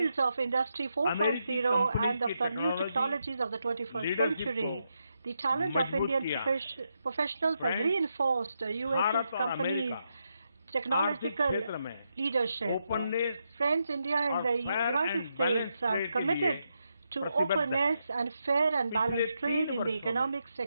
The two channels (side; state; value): both; inverted; correlation -0.82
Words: of Industry 4.0 and of the new technologies of the 21st century. The talent of Indian professionals has reinforced U.S. companies' technological leadership. Friends, India and the United States are committed to openness and fair and balanced trade in the economic